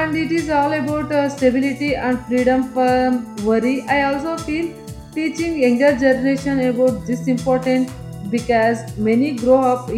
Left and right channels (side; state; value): both; identical; correlation 1.00